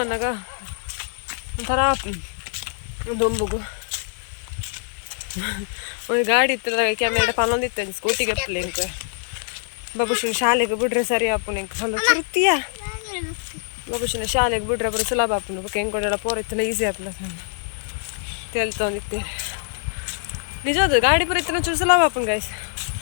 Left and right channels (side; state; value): right; silent; 61 dB below the other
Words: ಬಂದಾಗ ಒಂಥರ ದೊಂಬುಗು ಒಂದು ಗಾಡಿ ಇತ್ತಲ್ಲ ಕ್ಯಾಮೆರಾ ಪನ್ನೊಂದಿತ್ತು ಸ್ಕೂಟಿಗೆ ಅಪ್ಪಲೆ ಇಂಕ ಬಾಬುಶಿನ ಶಾಲೆಗೆ ಬಿಡ್ರೆ ಸರಿ ಆಪುನ ಇಂಕ ಹೊಲ ಚುರುತಿಯ ಬಾಬುಶಿನ ಶಾಲೆಗೆ ಬಿಡ್ರೆ ಬರೋ ಸುಲಭ ಆಪುನ ಬೊಕ್ಕ ಹೆಂಗೆ ಕೊಡೋಲ್ಲ ಪೋರ ಇತ್ತಲ್ಲ ಈಸಿ ಆಪುನ ತೇಲ್ತೊಂದಿತ್ತೇನೆ ನಿಜವಾದ ಗಾಡಿ ಪುರ ಇತ್ತನ ಚೂರು ಸುಲಭ ಆಪುನ ಗಾಯ್ಸ್